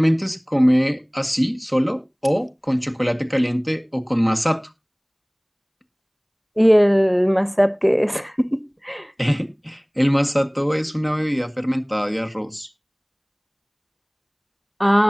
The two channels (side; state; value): both; identical; correlation 1.00